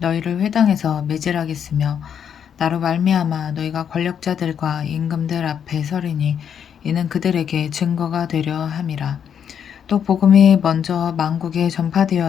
회당에서 매질하겠으며 나로 말미암아 너희가 권력자들과 임금들 앞에 서리니 이는 그들에게 증거가 되려 함이라. 또 복음이 먼저 만국에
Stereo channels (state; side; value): quieter; right; 8.2 dB